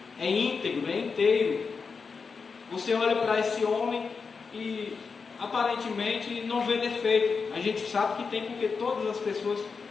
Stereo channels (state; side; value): quieter; right; 5.1 dB